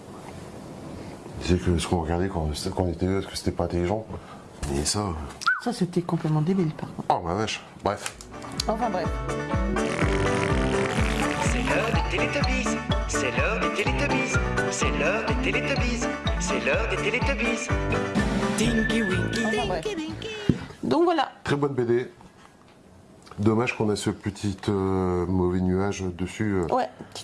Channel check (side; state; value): both; identical; correlation 1.00